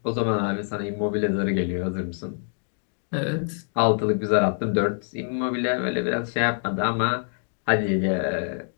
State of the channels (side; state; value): right; silent; 60 dB below the other